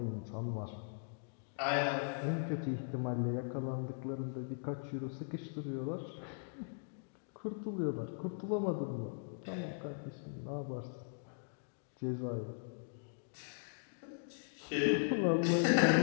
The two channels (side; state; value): right; silent; digital silence